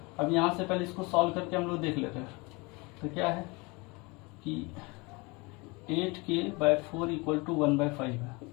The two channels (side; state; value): right; quieter; 26.5 dB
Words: अब यहाँ से पहले इसको सॉल्व करके हम लोग देख लेते हैं। तो क्या है कि 8k/4 इक्वल टू 1/5 है,